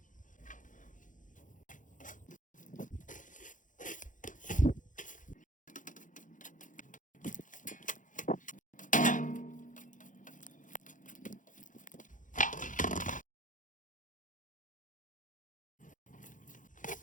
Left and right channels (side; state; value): right; late; 0.38 ms